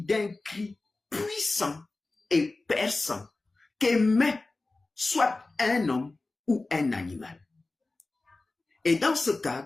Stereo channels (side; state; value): right; quieter; 3.3 dB